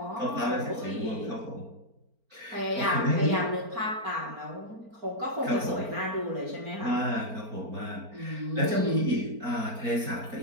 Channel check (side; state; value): left; late; 4.4 ms